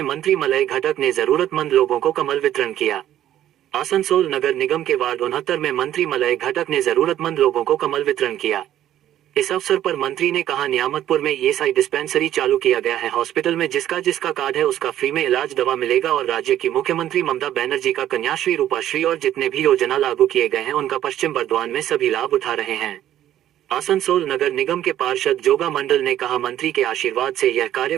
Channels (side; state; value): left; quieter; 12.0 dB